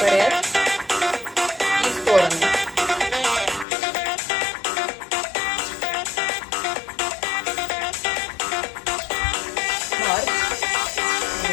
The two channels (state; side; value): drops out; right; at 3.7 s